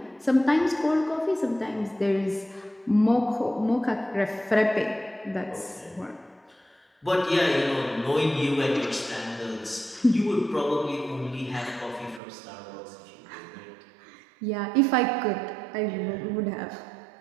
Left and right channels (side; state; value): left; drops out; at 12.2 s